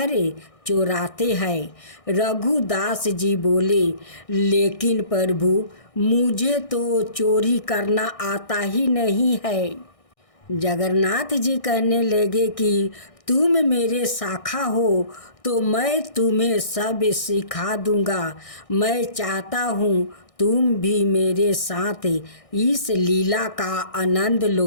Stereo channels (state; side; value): late; right; 1.6 ms